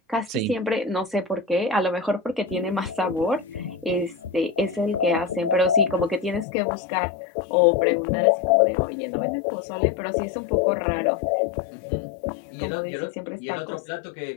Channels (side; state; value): right; drops out; at 6.5 s